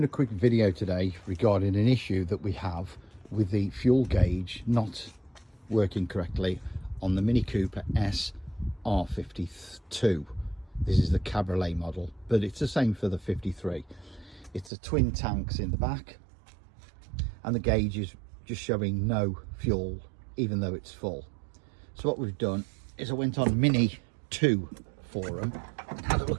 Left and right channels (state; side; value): drops out; left; at 14.7 s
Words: a quick video today regarding an issue that we have with the fuel gauge not working correctly on the Mini Cooper S R52. This is the Cabriolet model, but it's the same for the 53. It's the twin tanks in the back and the gauge is just showing no fuel even though it's full. So what we've done is I went on Mini 2 forum and had a